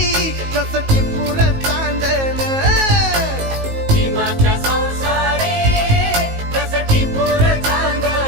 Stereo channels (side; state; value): left; late; 19 ms